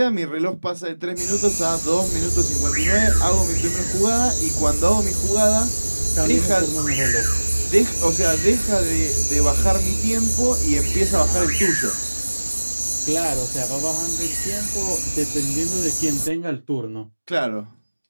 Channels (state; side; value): inverted; both; correlation -1.00